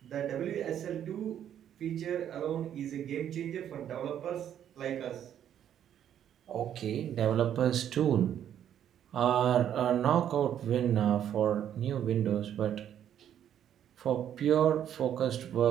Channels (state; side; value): quieter; left; 10.0 dB